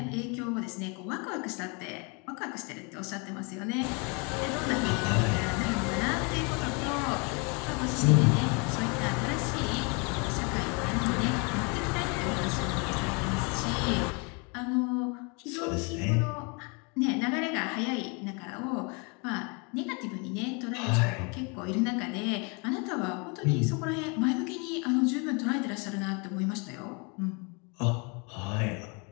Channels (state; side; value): quieter; right; 32.4 dB